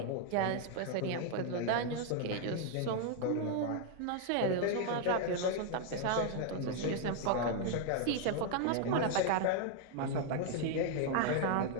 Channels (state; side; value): different; both; correlation 0.00